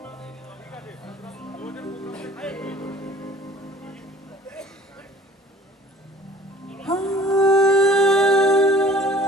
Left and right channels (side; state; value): both; normal; correlation 0.50